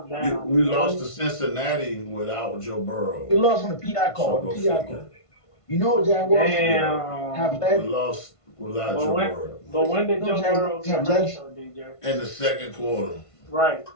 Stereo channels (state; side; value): late; right; 1.5 ms